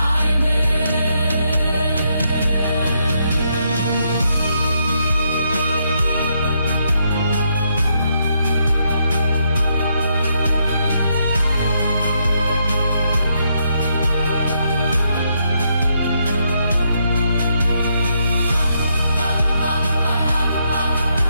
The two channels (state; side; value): inverted; both; correlation -0.77